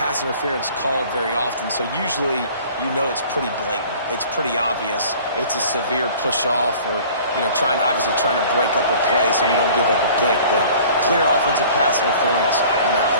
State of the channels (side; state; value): both; inverted; correlation -0.48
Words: interference called very often, so usually you know it's pretty blatant. It's pretty obvious. It's a severe push-off or, obviously trying to break up a play so you don't give up a pick, but clear offensive pass interference on that